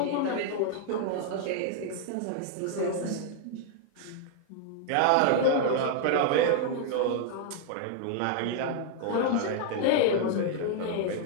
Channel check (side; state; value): both; different; correlation 0.00